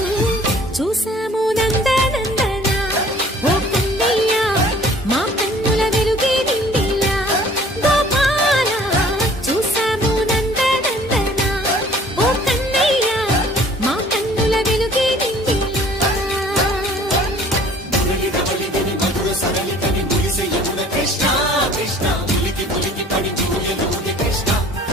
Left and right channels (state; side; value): normal; both; correlation 0.53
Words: చూసాము నందనందన ఓ కన్నయ్య మా కన్నుల వెలుగే నిండిలా గోపాల చూసాము నందనందన ఓ కన్నయ్య మా కన్నుల వెలుగే నిండిలా కృష్ణ కృష్ణ ములికి ములికి పడి జూయలోని కృష్ణ